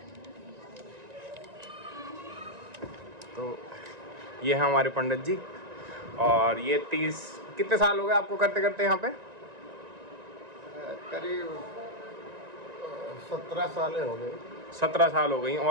तो ये है हमारे पंडित जी, और ये 30 कितने साल हो गए आपको करते करते यहाँ पे? करीब 17 साल हो गए। 17 साल हो गई,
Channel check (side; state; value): left; late; 1.9 ms